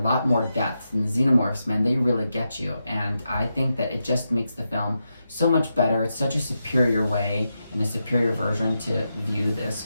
more depth. And the xenomorphs, man, they really get you. And I think that it just makes the film so much better. It's such a superior way and a superior version to view this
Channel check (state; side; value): inverted; both; correlation -0.87